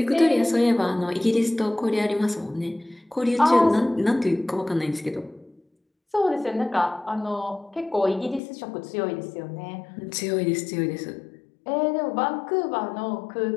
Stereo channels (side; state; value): right; drops out; at 8.4 s